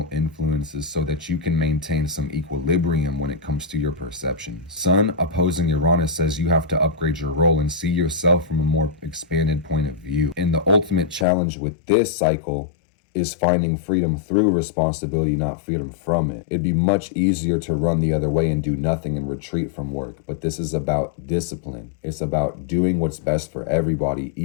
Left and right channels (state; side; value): drops out; right; at 11.2 s